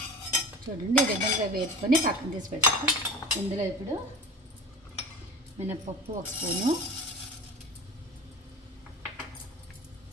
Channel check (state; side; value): normal; both; correlation 0.35